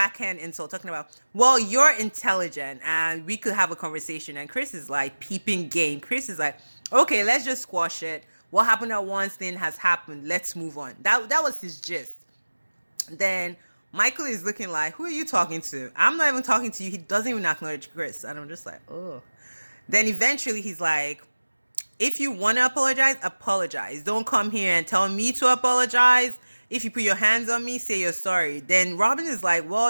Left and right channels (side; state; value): both; inverted; correlation -1.00